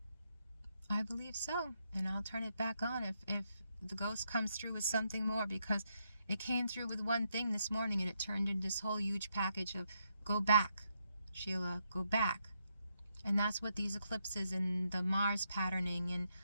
I believe so. And I'll turn it back on if the ghost comes through with something more, because it came through with one thing this morning and it turned into this whole huge package of go back, Sheila, go back. And that's what these eclipses and the Mars patterning and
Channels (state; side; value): inverted; both; correlation -0.79